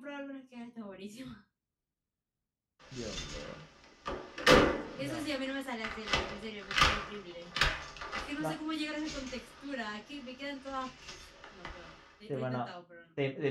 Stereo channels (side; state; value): both; identical; correlation 1.00